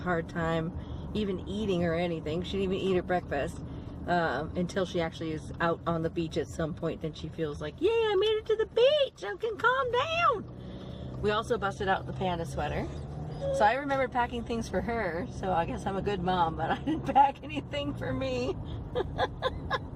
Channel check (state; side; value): identical; both; correlation 1.00